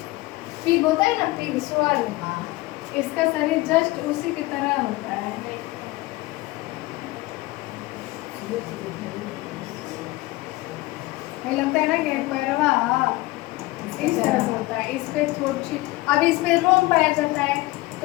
पिग होता है ना, पिग स्वर, इसका शरीर जस्ट उसी की तरह होता है। हमें लगता है ना कि पैरवा इस तरह से होता है, इस पे थोड़ी, अब इसमें रोम पाया जाता है।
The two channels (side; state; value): right; quieter; 20.1 dB